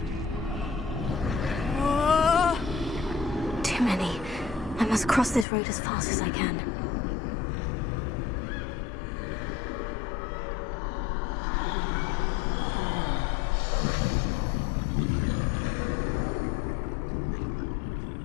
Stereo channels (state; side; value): drops out; right; at 5.5 s